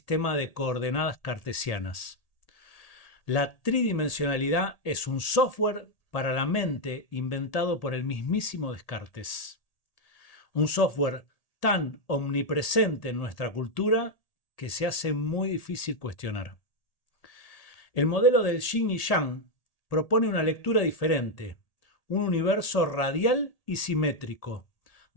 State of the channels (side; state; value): right; late; 1.8 ms